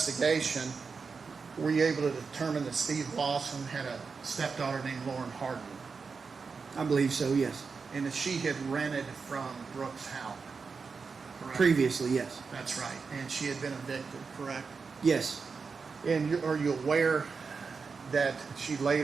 were you able to determine that Steve Lawson had a stepdaughter named Lauren Harden, I believe so, yes. and that she had rented from Brooks Houck? Correct? Previously, yes. That's right. And she had been evicted, correct? Yes. And are you aware that she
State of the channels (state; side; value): quieter; left; 5.0 dB